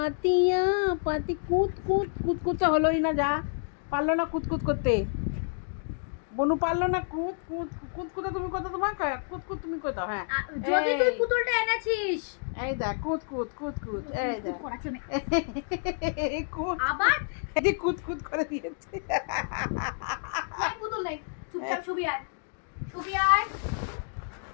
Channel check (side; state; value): right; silent; 58 dB below the other